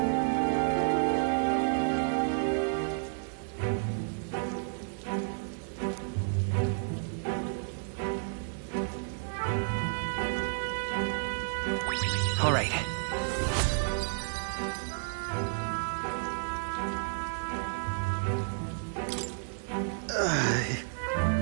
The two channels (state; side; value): silent; left; 57 dB below the other